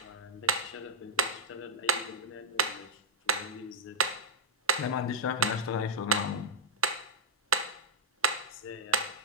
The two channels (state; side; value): normal; both; correlation -0.03